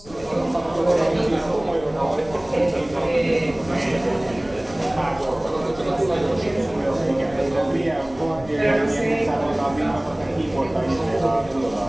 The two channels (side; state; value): left; noise; rumble, 20 dB below the sound